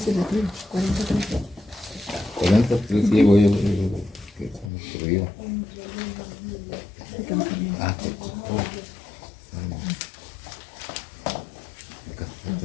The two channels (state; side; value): drops out; right; at 4.7 s